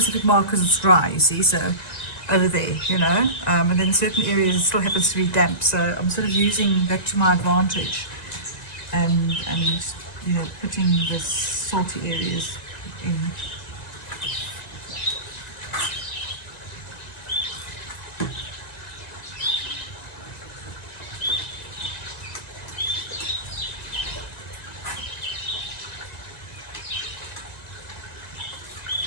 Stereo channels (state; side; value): late; right; 1.9 ms